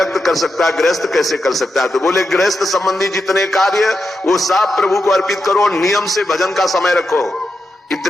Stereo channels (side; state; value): both; normal; correlation 0.87